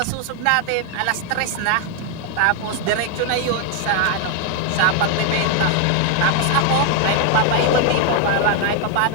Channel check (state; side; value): different; both; correlation 0.00